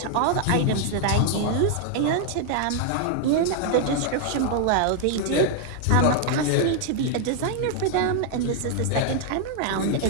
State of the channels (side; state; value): both; different; correlation 0.00